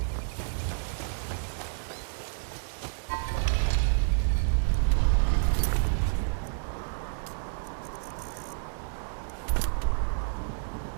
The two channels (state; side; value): silent; left; digital silence